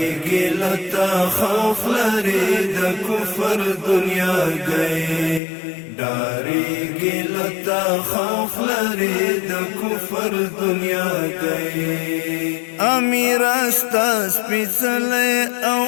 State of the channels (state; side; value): drops out; right; at 5.4 s